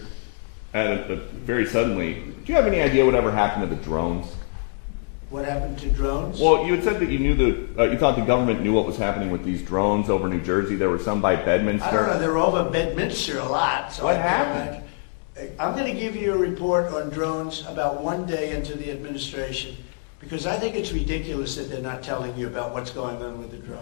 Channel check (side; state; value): right; silent; 56 dB below the other